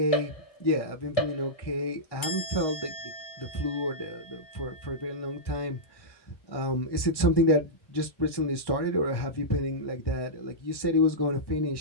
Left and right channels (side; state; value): right; late; 1.6 ms